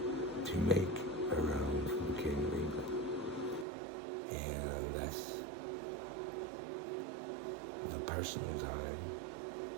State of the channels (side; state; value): left; drops out; at 3.7 s